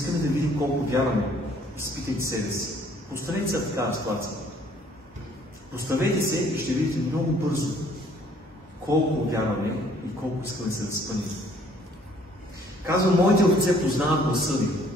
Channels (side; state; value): both; normal; correlation 0.60